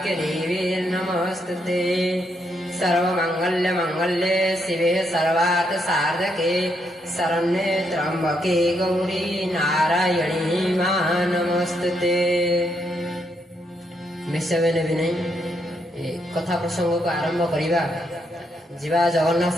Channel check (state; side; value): normal; both; correlation 0.77